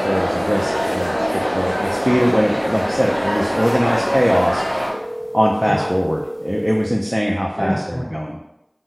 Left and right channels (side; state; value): both; identical; correlation 1.00